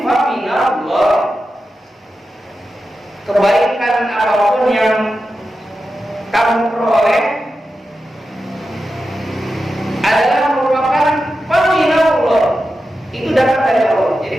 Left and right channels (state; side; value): normal; both; correlation 0.91